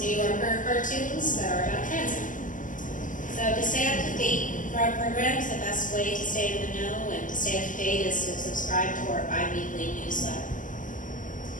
New Yorker cartoons that are about transit. So to stay up to date for our programs, the best way to stay in the know and to stay up to date is to subscribe to our bi-weekly newsletter.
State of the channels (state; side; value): late; right; 0.38 ms